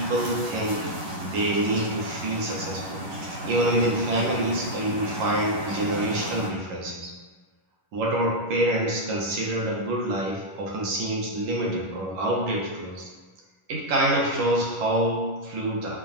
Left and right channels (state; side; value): late; left; 11 ms